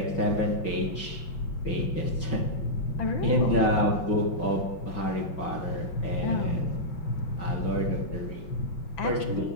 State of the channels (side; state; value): right; late; 5.3 ms